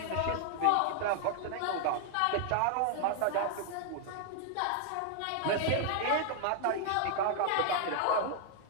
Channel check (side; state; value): both; different; correlation 0.00